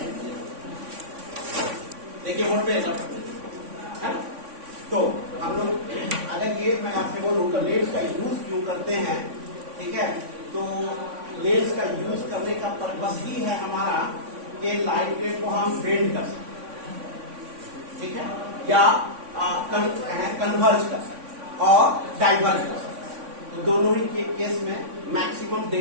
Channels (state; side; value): late; left; 3.5 ms